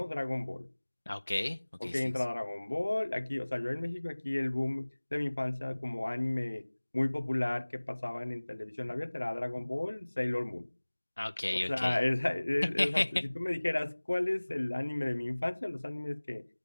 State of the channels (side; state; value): both; inverted; correlation -1.00